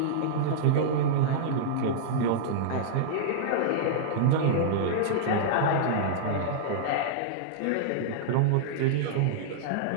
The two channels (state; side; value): different; both; correlation -0.02